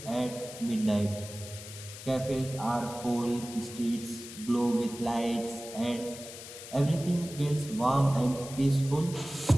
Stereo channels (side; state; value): left; noise; hiss, 13 dB below the sound